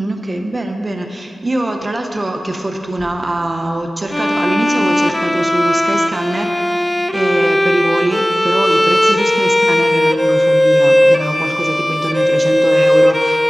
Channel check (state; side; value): normal; both; correlation 0.98